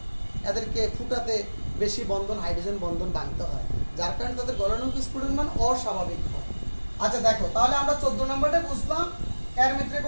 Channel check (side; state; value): both; inverted; correlation -1.00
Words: এদেরকে ফুটাতে বেশি বন্ধন, হাইড্রোজেন বন্ধন ভাঙতে হয়, যার কারণে তাদের গলনাঙ্ক স্ফুটনের মান অস্বাভাবিক হয়। আচ্ছা দেখো, তাহলে আমরা 14 নম্বরটা বুঝলাম, এর ভিতরে